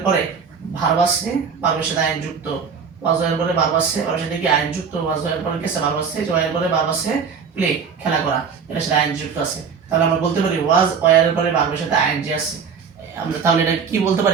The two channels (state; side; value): quieter; left; 6.2 dB